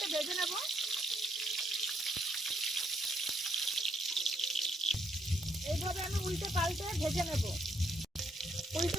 ভেজে নেব। এইভাবে আমি উল্টে পাল্টে ভেজে নেব।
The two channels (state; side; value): normal; both; correlation 0.73